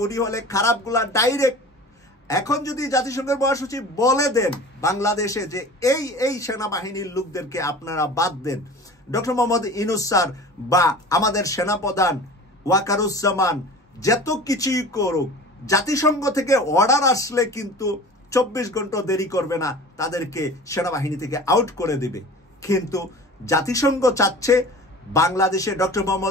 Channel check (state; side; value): normal; both; correlation 0.39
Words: উনি হলে খারাপগুলা ডাইরেক্ট। এখন যদি জাতিসংঘের মহাসচিব বলে দেন বাংলাদেশে যে এই সেনাবাহিনীর লোকদেরকে আপনারা বাদ দেন, ডক্টর মোহাম্মদ ইউনূস স্যার বা আমাদের সেনাপ্রধান ওয়াকারুজ্জামান যত কিছুই করুক, জাতিসংঘ থেকে অর্ডার আসলে কিন্তু 24 ঘন্টা দেরি করবে না, তাদেরকে সেনাবাহিনী থেকে আউট করে দেবে। কিন্তু জাতিসংঘ চাচ্ছে বাংলাদেশে ডক্টর